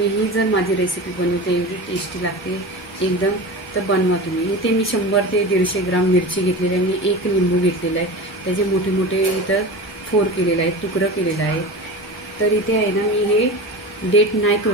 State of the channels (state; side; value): normal; both; correlation 0.29